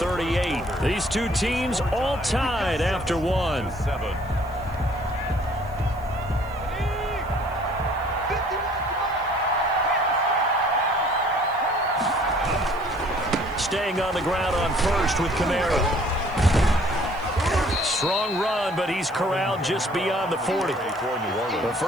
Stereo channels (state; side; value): noise; right; hiss, 27 dB below the sound